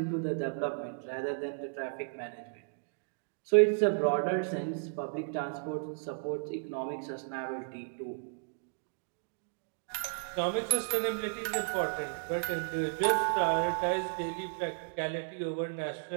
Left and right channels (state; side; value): silent; left; digital silence